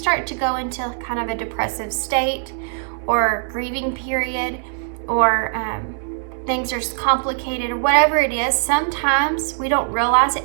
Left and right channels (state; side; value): silent; left; digital silence